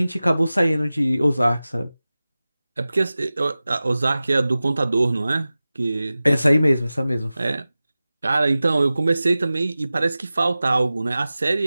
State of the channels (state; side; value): inverted; both; correlation -0.96